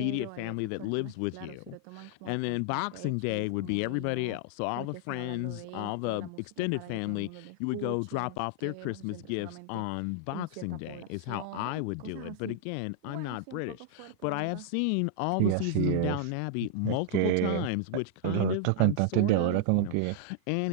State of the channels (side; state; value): both; different; correlation -0.01